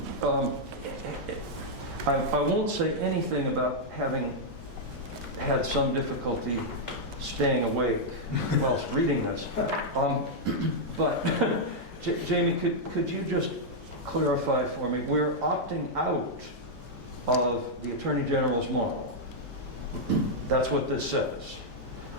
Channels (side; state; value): both; normal; correlation -0.05